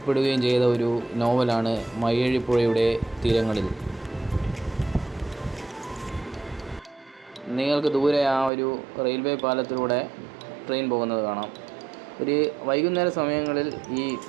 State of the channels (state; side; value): drops out; left; at 8.5 s